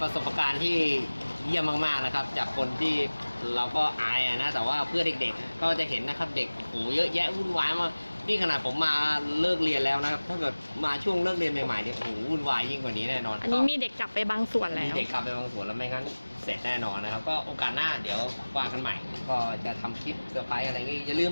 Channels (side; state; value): both; inverted; correlation -1.00